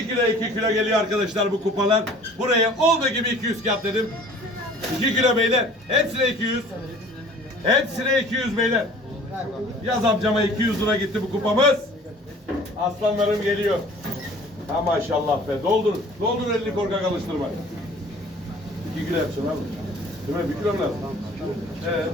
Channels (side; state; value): both; normal; correlation 0.49